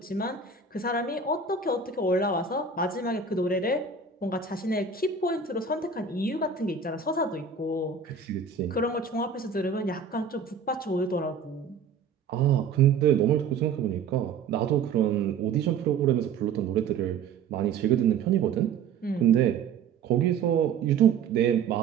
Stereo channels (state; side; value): quieter; left; 5.8 dB